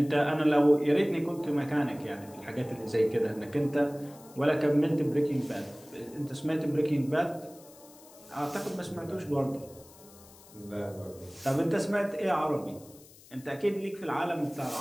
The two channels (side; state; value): left; noise; hiss, 23 dB below the sound